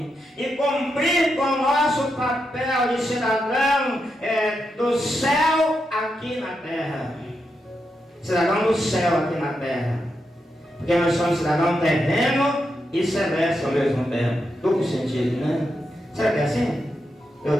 e cumprir com o nosso papel de cidadão do céu aqui na terra. Cidadão do céu aqui na terra. Porque nós somos cidadão terreno e celeste ao mesmo tempo. Duplo sentido, né? Será que é assim? Eu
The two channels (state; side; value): normal; both; correlation 0.85